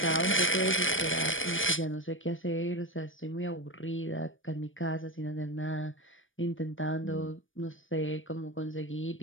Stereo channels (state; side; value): late; right; 0.57 ms